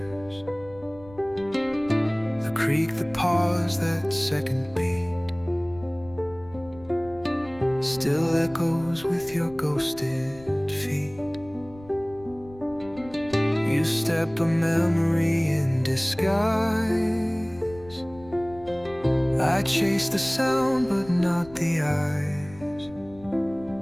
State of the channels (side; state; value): left; noise; rumble, 21 dB below the sound